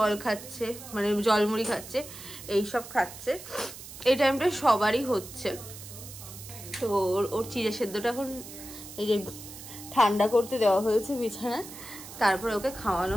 খাচ্ছে, মানে জল মুড়ি খাচ্ছে, এইসব খাচ্ছে। এই টাইমটা সবারই হচ্ছে। তো ওর চিড়ে সেদ্ধটা এখন এই যে ঠান্ডা করতে দেওয়া হয়েছে বিছানায়, তারপরে ওকে খাওয়ানো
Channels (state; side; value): noise; right; hiss, 14 dB below the sound